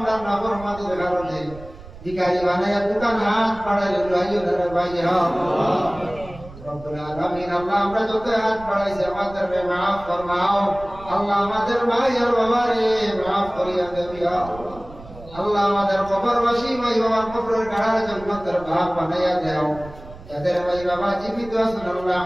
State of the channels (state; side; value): noise; right; rumble, 17 dB below the sound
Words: নাফরমানির কারণে ভিখারি বানায়া দোকান হাত বাড়াইলে লইয়া ধরে ভাইয়া আল্লাহ রব্বুল আলামিন। আল্লাহ আমরা যত হাত বাড়াইছি আমাদের মাফ ফরমাও আল্লাহ, আমাদের ভাই আর বাবারে মাফ করিয়া দেবি আল্লাহ। আল্লাহ আমাদের কবরবাসী ভাই বাবার কবরের গাড়ার জান্নাতের ভাগ বানাইয়া দাও। যাদের ভাই বাবা জীবিত আছেন আল্লাহ